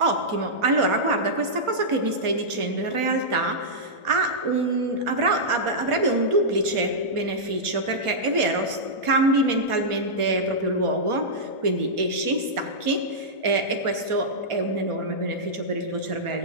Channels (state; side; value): late; left; 1.4 ms